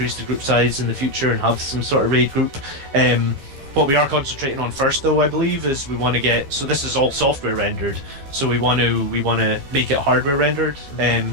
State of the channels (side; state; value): left; late; 15 ms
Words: the group size in the future and have some sort of raid group. What we are concentrating on first, though, I believe, is we want to get. So this is all software rendered. So we want to make it hardware rendered.